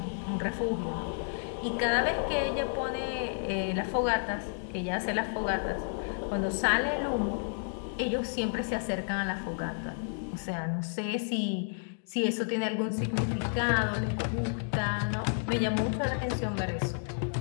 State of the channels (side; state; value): right; silent; digital silence